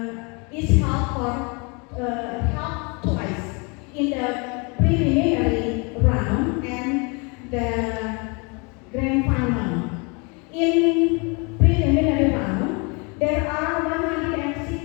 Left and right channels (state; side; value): quieter; right; 31.3 dB